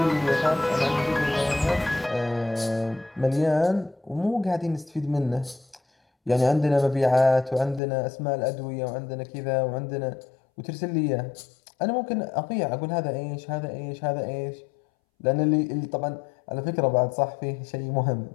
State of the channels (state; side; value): drops out; right; at 7.8 s